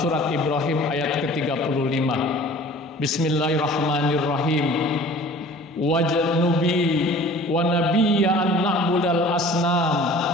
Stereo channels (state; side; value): normal; both; correlation 0.47